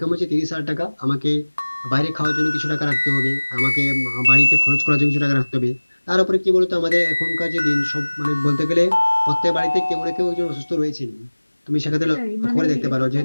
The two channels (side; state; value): both; inverted; correlation -1.00